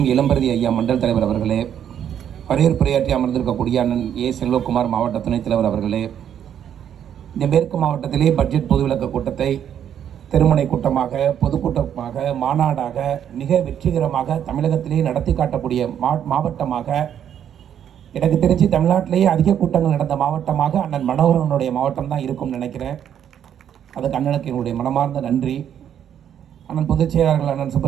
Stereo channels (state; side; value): quieter; left; 9.4 dB